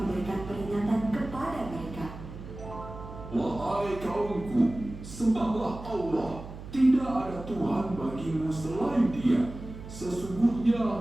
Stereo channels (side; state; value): right; noise; hum, 12 dB below the sound